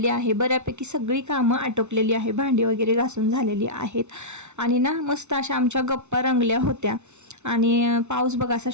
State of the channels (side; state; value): left; late; 0.82 ms